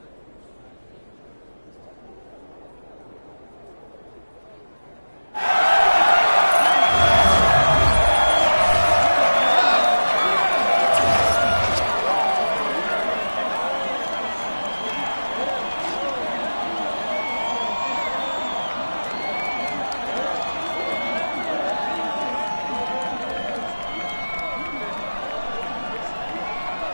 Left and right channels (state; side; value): inverted; both; correlation -1.00